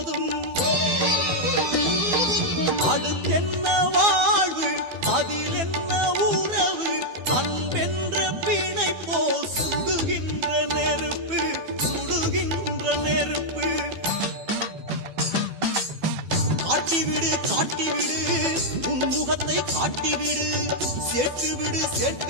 அடுத்தென்ன வாழ்வு, அதில் என்ன உறவு, அன்பென்ற பிணை போ சுடுகின்ற நெருப்பு, சுடுகின்ற நெருப்பு. காட்டிவிடு, காட்டிவிடு, உன் முகத்தை காட்டிவிடு, சேர்த்துவிடு,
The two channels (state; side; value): late; left; 12 ms